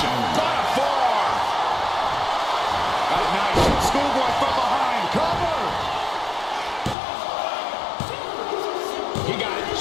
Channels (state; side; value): drops out; right; at 7.0 s